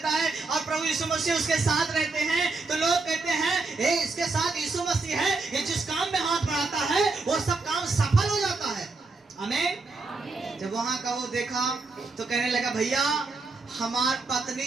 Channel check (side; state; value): left; quieter; 3.8 dB